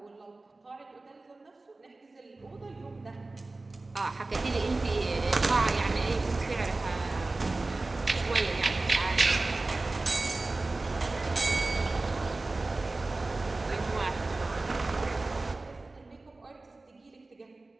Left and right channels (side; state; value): left; quieter; 3.2 dB